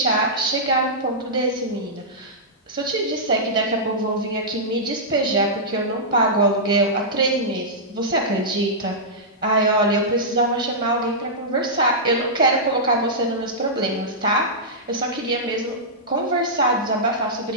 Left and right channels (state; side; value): normal; both; correlation -0.12